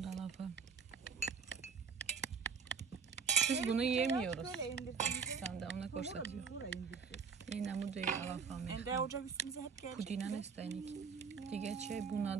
алафа. Biz bunu yemiyoruz. Sen de ona koşatıyor. Ин ҳамуди алафа мехла. Pudina nestaynik. Diğer şey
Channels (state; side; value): quieter; left; 6.0 dB